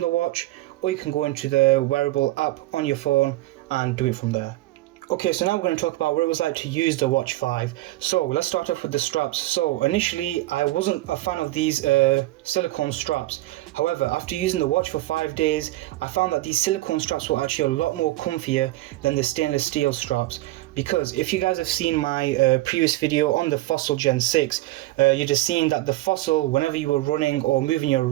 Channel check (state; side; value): quieter; left; 17.7 dB